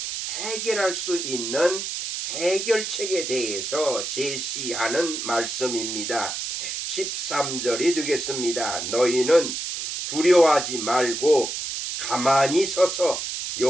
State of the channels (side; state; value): right; noise; hiss, 4 dB below the sound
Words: 해결할 수 있는 해결책에 대해서 제시하는 말씀입니다. 13절이 되겠습니다. 너희는 두려워하지 말고 가만히 서서